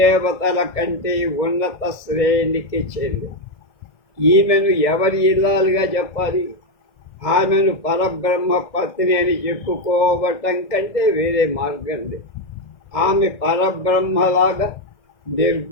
కంటే ఉన్నత శ్రేణికి చెంది. ఈమెను ఎవరి ఇల్లాలుగా చెప్పాలి? ఆమెను పరబ్రహ్మ పత్ని అని చెప్పుకోవటం కంటే వేరే మార్గం లేదు. ఆమె పరబ్రహ్మలాగా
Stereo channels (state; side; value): late; right; 1.6 ms